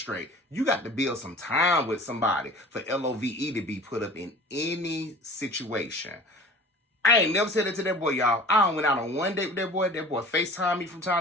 You got to build some time with somebody for LOVE to be put up in any situation. I ain't never said that to that boy, y'all. I went out on one date with that boy. That boy FaceTime me from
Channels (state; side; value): normal; both; correlation 0.43